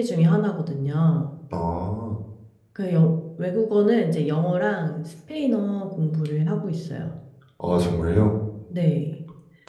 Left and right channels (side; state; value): both; identical; correlation 1.00